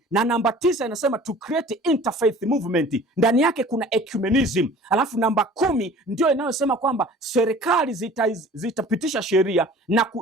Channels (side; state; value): both; normal; correlation 0.46